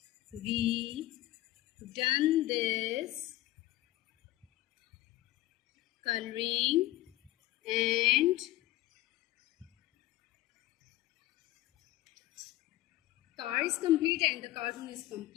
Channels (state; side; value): quieter; right; 16.5 dB